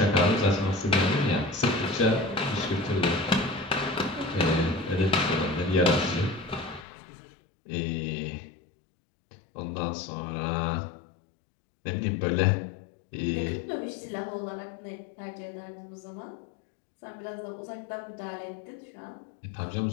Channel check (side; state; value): right; drops out; at 6.9 s